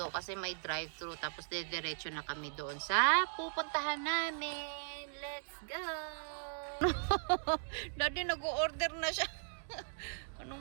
kasi may drive-thru. Tapos, diretso na kami doon sa pupuntahan namin. Let's go! Daddy, nag-order na siya.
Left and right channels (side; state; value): left; silent; digital silence